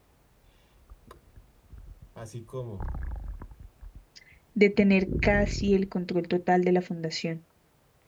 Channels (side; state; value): both; identical; correlation 1.00